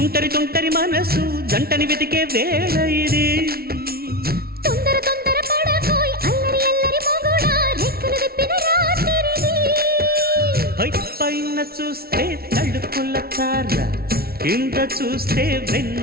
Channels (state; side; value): late; left; 0.44 ms